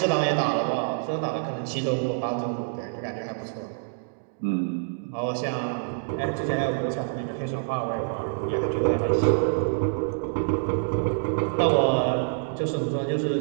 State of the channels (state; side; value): silent; left; digital silence